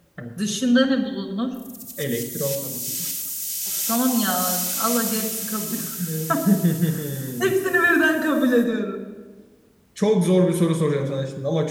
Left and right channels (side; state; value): both; identical; correlation 1.00